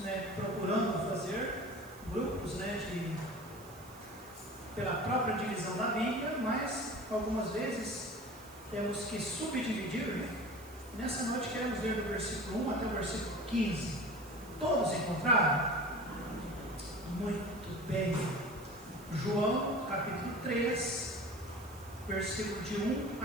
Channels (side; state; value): right; noise; hiss, 21 dB below the sound